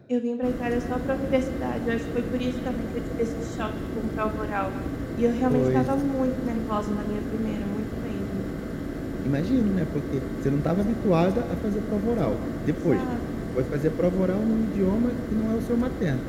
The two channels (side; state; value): both; identical; correlation 1.00